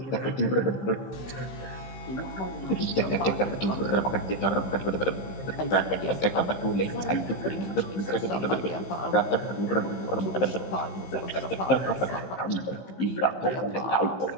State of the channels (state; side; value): late; right; 15 ms